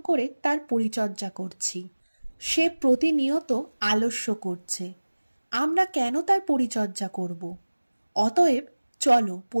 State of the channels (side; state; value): both; inverted; correlation -1.00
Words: করে তার পরিচর্যা করছি। সে প্রতিনিয়ত আলস্য করছে। আমরা কেন তার পরিচর্যা করব? অতএব চলো